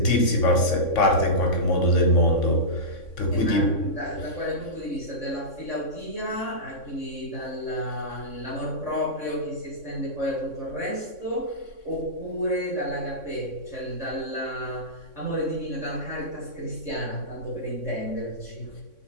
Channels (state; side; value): late; right; 3.6 ms